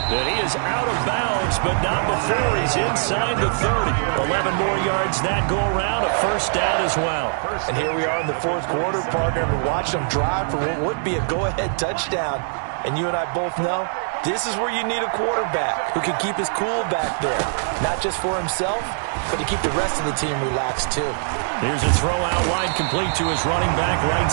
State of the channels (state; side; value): silent; left; digital silence